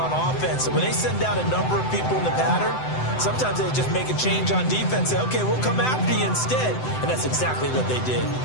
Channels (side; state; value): right; late; 7.9 ms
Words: offense. So when they send out a number of people in the pattern, sometimes they just make a change on defense. Say, okay, we'll come after you instead. And that's exactly what they did.